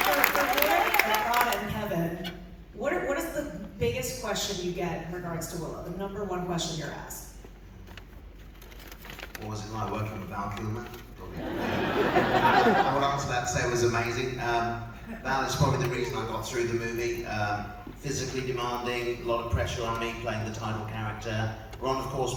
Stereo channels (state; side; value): identical; both; correlation 1.00